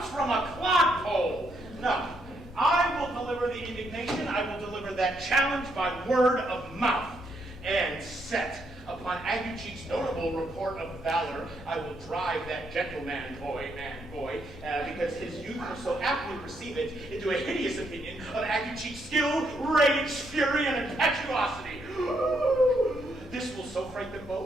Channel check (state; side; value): normal; both; correlation 0.76